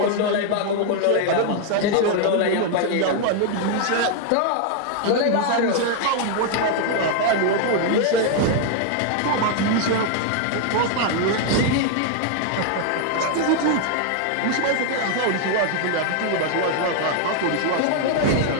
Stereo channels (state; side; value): different; both; correlation 0.00